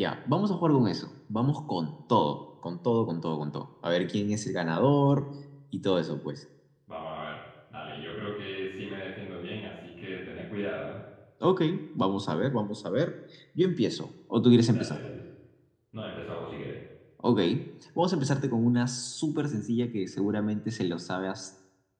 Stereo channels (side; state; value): both; identical; correlation 1.00